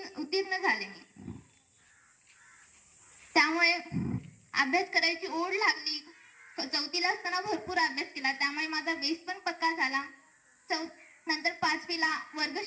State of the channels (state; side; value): identical; both; correlation 1.00